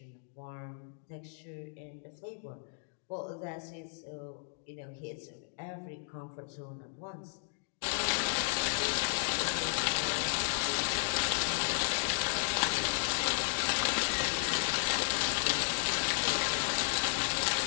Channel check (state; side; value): silent; right; digital silence